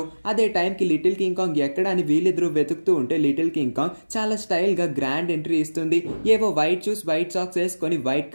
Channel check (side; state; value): both; inverted; correlation -1.00